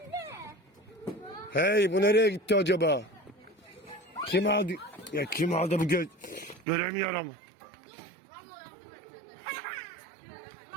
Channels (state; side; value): drops out; left; at 6.7 s